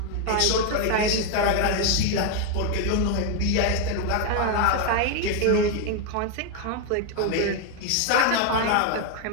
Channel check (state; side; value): different; both; correlation 0.01